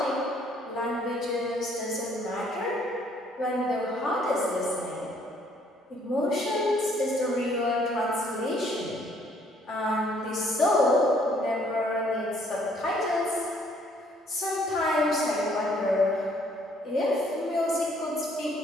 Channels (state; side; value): normal; both; correlation 0.63